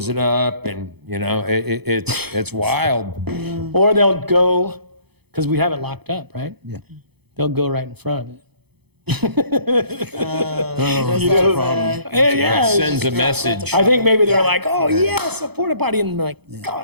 it up, and you know, it's wild. Or they'll go, because we have it locked up, right? Yeah. They'll go right in front of it. Yeah, it sends a message. I think maybe they're like, oh yes, a porta potty, and they're like,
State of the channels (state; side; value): late; left; 0.98 ms